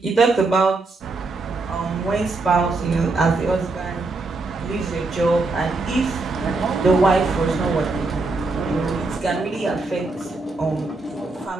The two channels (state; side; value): quieter; left; 3.4 dB